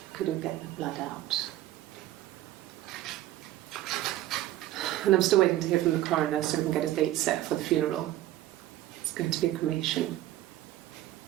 Couldn't get the blood out. And I'm still waiting to hear from the coroner so we can get a date set for the funeral. It's going to be a cremation.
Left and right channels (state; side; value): quieter; left; 14.6 dB